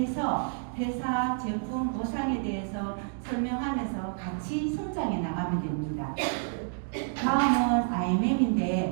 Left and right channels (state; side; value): silent; left; digital silence